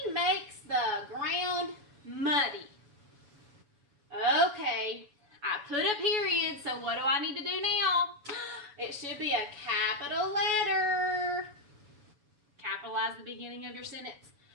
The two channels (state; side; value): late; left; 7.0 ms